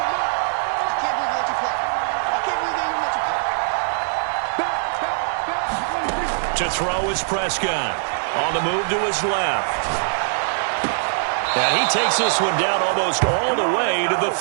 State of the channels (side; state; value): left; silent; digital silence